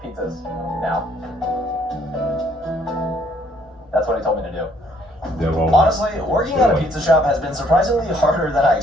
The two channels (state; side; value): normal; both; correlation 0.65